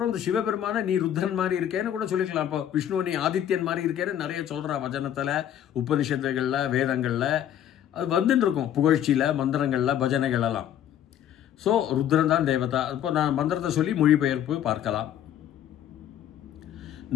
இந்த சிவபெருமான நீ ருத்ரன் மாதிரி இருக்கேன்னு கூட சொல்லிக்கலாம். இப்போ விஷ்ணு நீ ஆதித்யன் மாதிரி இருக்கேன்னு நிறைய சொல்கிறா வச்சனத்தில், உபனிஷத்துகளில், வேதங்களில் அது வந்துட்டு இருக்கும். புகழ்ச்சியில், மந்திரங்களில், பஜனைகளெல்லாம். ஸோ ருத்ரன் தான் தேவதா. இப்போ நான் மந்திரத்தை சொல்லி மொழிபெயர்ப்பு பார்க்கலாம்.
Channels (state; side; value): quieter; right; 10.5 dB